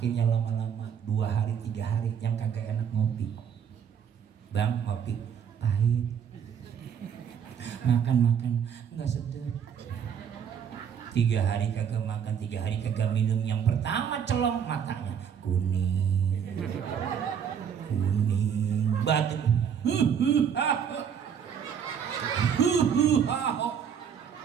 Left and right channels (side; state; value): left; quieter; 7.8 dB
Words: lama-lama 2 hari 3 hari yang kagak enak ngopi. Bang, ngopi pahit. Makan nggak sedap. 3 hari kagak makan, 3 hari kagak minum. Yang pertama celong, matanya kuning, batuk.